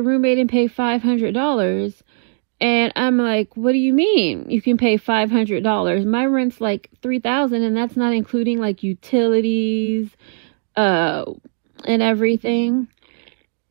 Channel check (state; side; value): silent; left; digital silence